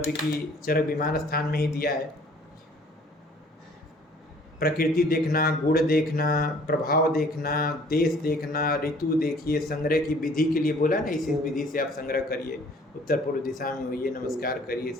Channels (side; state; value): both; normal; correlation 0.55